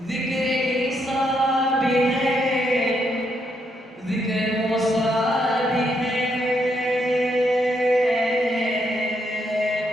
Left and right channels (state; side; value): normal; both; correlation 0.77